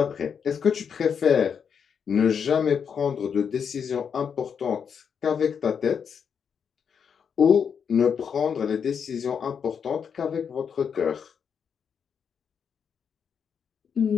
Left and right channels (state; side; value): quieter; right; 7.0 dB